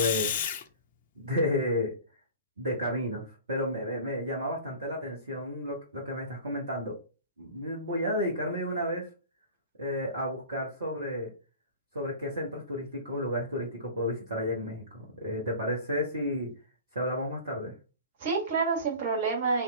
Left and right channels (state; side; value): inverted; both; correlation -0.38